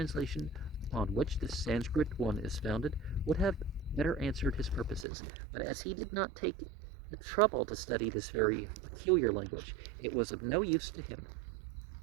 upon which this Sanskrit one is founded, would have better answered his purposes, but as he did not take the trouble to study this very peculiar language, it was of no use to him.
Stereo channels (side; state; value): left; drops out; at 5.1 s